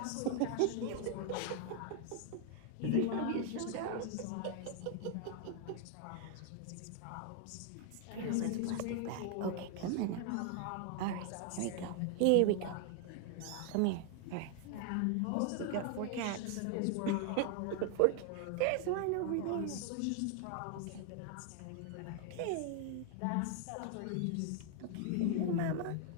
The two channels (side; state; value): both; different; correlation 0.00